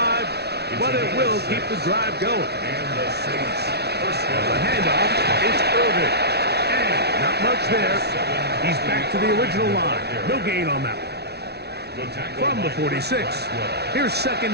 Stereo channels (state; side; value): late; left; 0.48 ms